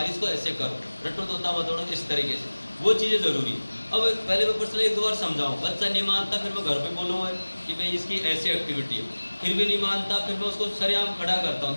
इसको ऐसे करो, रट्टो तोता मत दौड़ो, इस तरीके से वो चीज़ें ज़रूरी है। अब पहले मैं पर्सनली 1-2 बार समझाऊँ, बच्चा नहीं मानता, फिर मैं घर पे बोलूँगा कि भाई इसकी ऐसी एक्टिविटी है, फिर भी नहीं मानता, फिर मैं उसको सरेआम खड़ा करता हूँ,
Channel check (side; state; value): both; inverted; correlation -1.00